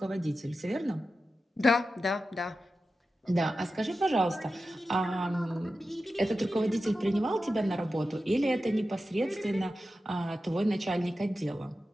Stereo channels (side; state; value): both; normal; correlation 0.92